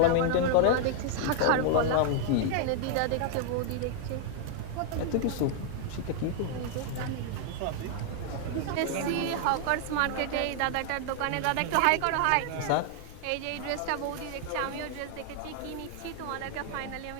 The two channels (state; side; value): different; both; correlation 0.00